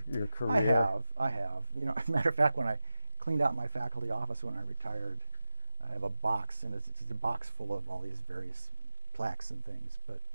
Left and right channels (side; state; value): both; inverted; correlation -0.94